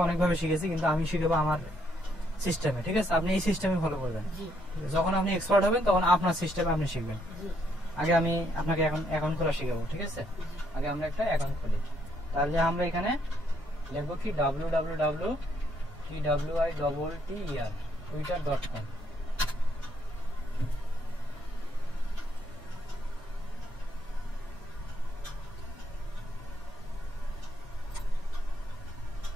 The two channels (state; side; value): normal; both; correlation 0.72